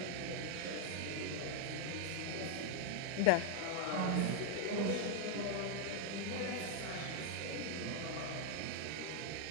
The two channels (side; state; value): both; different; correlation 0.01